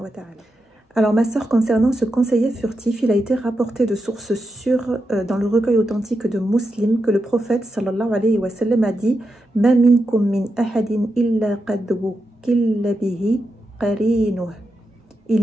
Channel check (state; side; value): normal; both; correlation 0.87